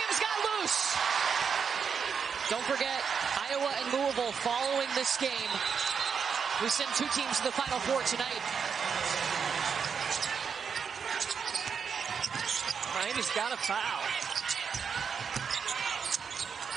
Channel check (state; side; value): quieter; left; 6.5 dB